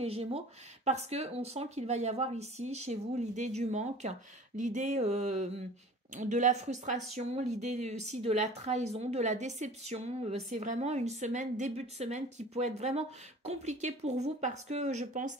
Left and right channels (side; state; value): both; normal; correlation 0.44